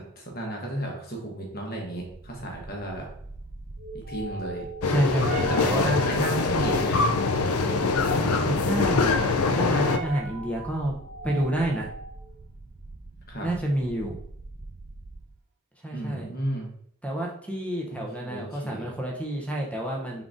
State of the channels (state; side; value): normal; both; correlation 0.39